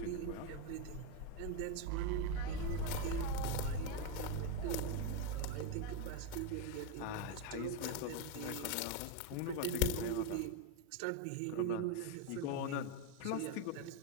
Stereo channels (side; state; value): both; different; correlation 0.03